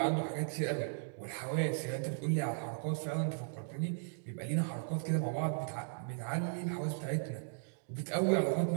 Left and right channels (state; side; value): silent; left; digital silence